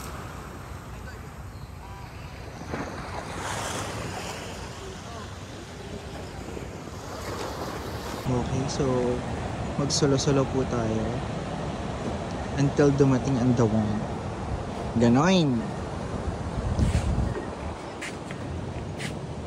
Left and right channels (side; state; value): both; identical; correlation 1.00